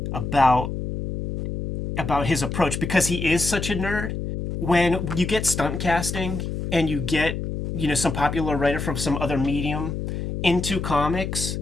about his approach, because he is such a nerd, when you get stunt casting and you get some popular writer from some other medium into comics,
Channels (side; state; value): left; noise; hum, 4 dB below the sound